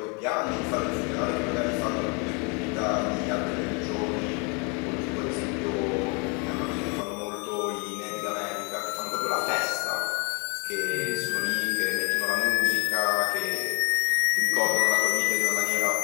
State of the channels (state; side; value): quieter; right; 34.2 dB